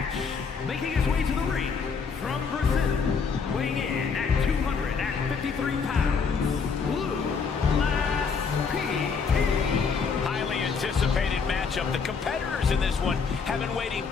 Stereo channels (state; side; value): quieter; right; 5.5 dB